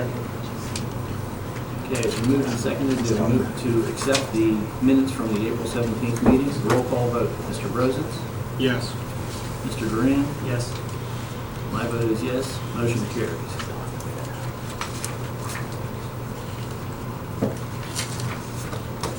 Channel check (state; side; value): identical; both; correlation 1.00